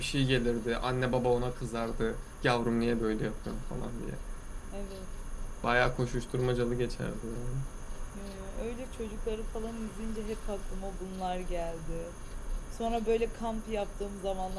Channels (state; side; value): identical; both; correlation 1.00